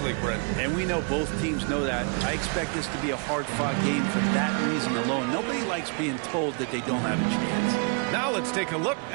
league, Brent. And we know both teams know that. I expect this to be a hard-fought game for that reason alone. Nobody likes being told that they don't have a chance. Now let's take a look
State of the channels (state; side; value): quieter; left; 38.5 dB